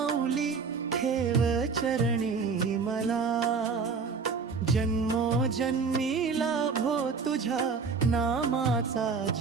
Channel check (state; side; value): quieter; left; 5.1 dB